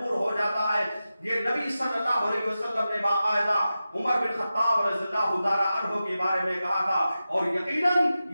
हो जाता है। ये नबी सल्लल्लाहु अलैहि वसल्लम ने बाकायदा उमर बिन खत्ताब रज़ियल्लाहु ताला अन्हु के बारे में कहा था, और यकीनन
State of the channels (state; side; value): inverted; both; correlation -0.93